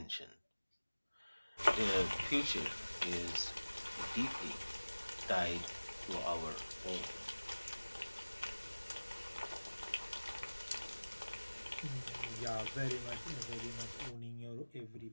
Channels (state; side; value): inverted; both; correlation -1.00